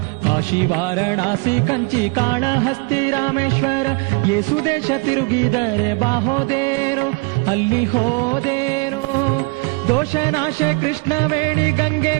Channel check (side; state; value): left; quieter; 29.3 dB